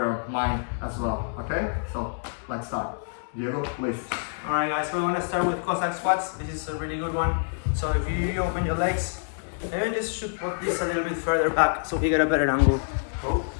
mind as well. Okay, so let's start. Diego, please. Alright guys, we're gonna start with Cossack squats. This is a really good one. So if you open your legs, maybe just should put this a little bit further back so we get a better angle. Oh.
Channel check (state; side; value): silent; right; 60 dB below the other